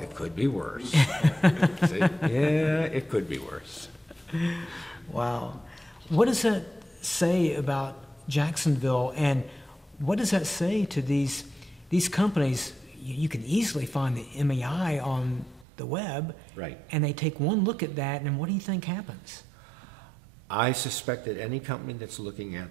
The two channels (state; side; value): drops out; left; at 15.7 s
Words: it could be worse. I say, yeah, it could be worse. Wow. What does that say about Jacksonville, and what does that say to these companies? You can easily find the MEI on the web, Right. and they take one look at that, and what do you think happens? I suspect that any company that's looking